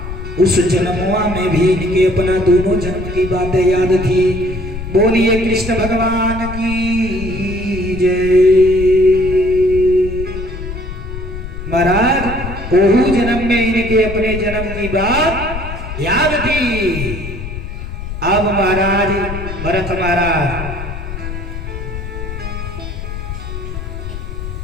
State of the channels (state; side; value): noise; left; rumble, 8 dB below the sound